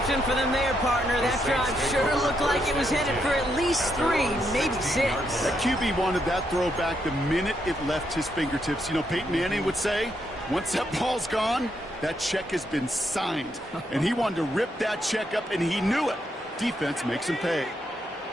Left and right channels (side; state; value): both; normal; correlation 0.78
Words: for them there, partner. That drive sure looked like it was headed for at least 3, maybe 6. That QB wanted that throw back the minute it left his fingertips. You know, Peyton Manning would say, once that ball's gone, that check has been signed. And he wanted to rip that check up, and he knew it. Defense makes him pay.